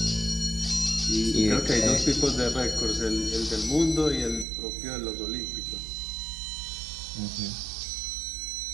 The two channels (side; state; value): left; drops out; at 4.5 s